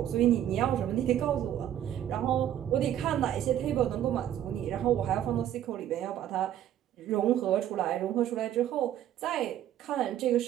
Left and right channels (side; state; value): left; quieter; 11.3 dB